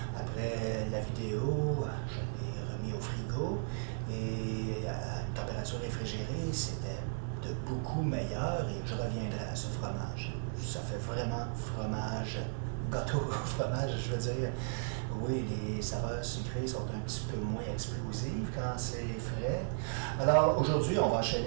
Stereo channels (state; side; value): silent; left; digital silence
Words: Après la vidéo, je l'ai remis au frigo et à une température réfrigérée, c'était de beaucoup meilleur et je reviendrai à ce fromage. Ça fait vraiment fromage, gâteau au fromage, je veux dire. Oui, les saveurs sucrées sont un petit peu moins explosives quand c'est frais. Alors aujourd'hui, on va